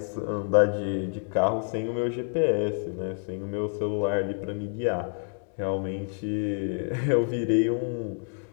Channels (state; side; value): silent; right; 59 dB below the other